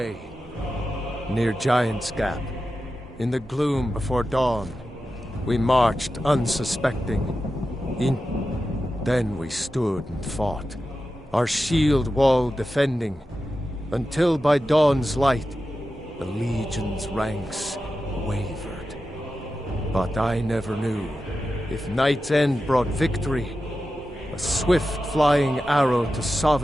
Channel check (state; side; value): normal; both; correlation 0.92